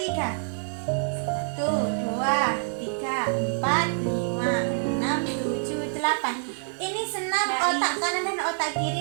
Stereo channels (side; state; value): left; silent; digital silence